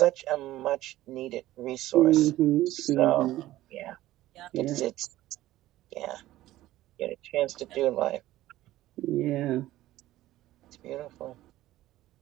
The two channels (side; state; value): left; quieter; 15.4 dB